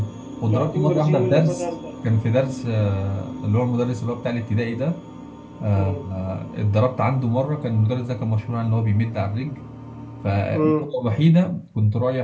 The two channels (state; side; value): identical; both; correlation 1.00